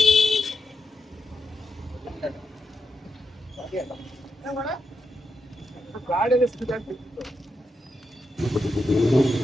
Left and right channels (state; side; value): normal; both; correlation 0.85